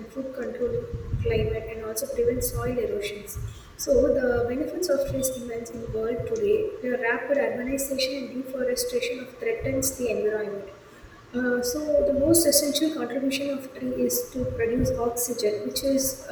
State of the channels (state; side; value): identical; both; correlation 1.00